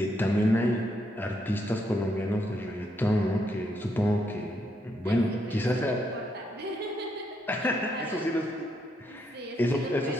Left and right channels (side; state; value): both; normal; correlation 0.77